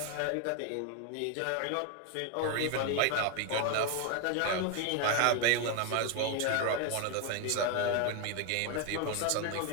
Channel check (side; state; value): both; different; correlation 0.01